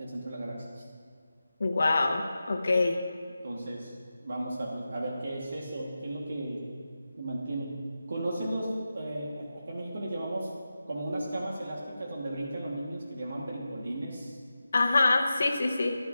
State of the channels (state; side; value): inverted; both; correlation -0.92